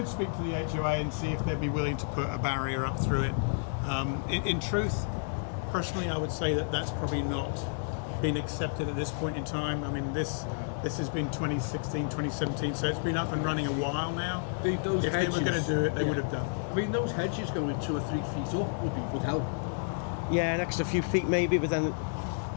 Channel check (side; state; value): right; silent; digital silence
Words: speak to the HOA and see if they'd be willing to put a barrier up through it. In truth, personally, I would say that that's probably not been accepted at this point in time. I mean, this has been 2016, 2017, so it's been up and running a while now. Those if hedges, they were going to do it, they would have done. I mean, those hedges going 2 or 3 feet up would help. Yeah, an extra few feet maybe, but then it